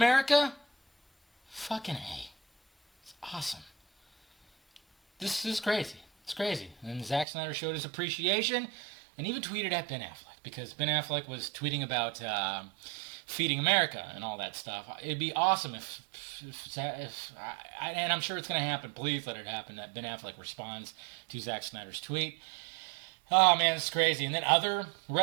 Fucking A. It's awesome. This is crazy. It's crazy. And Zack Snyder showed his appreciation and even tweeted at Ben Affleck, because Ben Affleck was tweeting about feeding America and all that stuff. It'd be awesome and I'm sure it's going to happen. Please let it happen, that Ben Affleck responds to Zack Snyder's tweet. Oh man, it's crazy. And then other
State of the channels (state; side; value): drops out; left; at 7.2 s